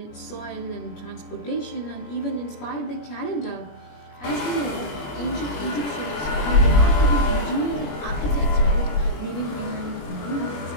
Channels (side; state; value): right; late; 21 ms